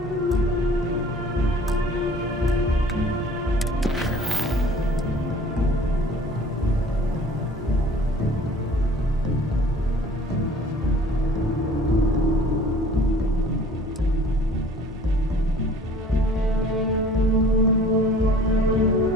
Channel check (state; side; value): normal; both; correlation 0.50